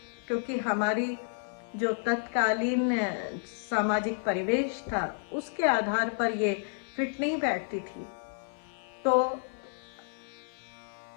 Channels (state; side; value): silent; right; 57 dB below the other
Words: क्योंकि हमारी जो तत्कालीन सामाजिक परिवेश था उसके आधार पर ये फिट नहीं बैठती थी। तो